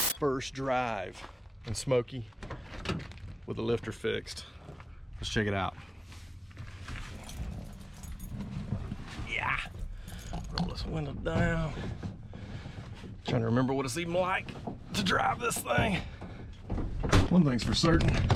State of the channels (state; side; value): normal; both; correlation 0.98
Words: drive in Smokey with the lifter fixed. Let's check it out. Yeah. Roll this window down. Trying to remember what it's even like to drive this thing. One thing's for certain,